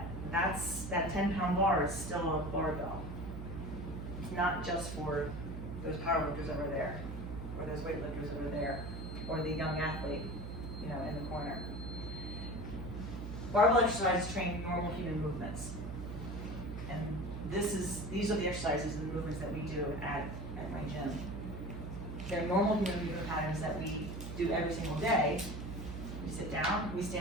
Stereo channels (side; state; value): right; noise; hum, 7 dB below the sound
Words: that 10-pound bar is still a barbell. It's not just for those powerlifters over there, or those weightlifters over there, or the young athlete, in the corner. Barbell exercises train normal human movements. And these are the exercises and the movements that we do at my gym. They're normal human movement patterns that we do every single day. We sit down, we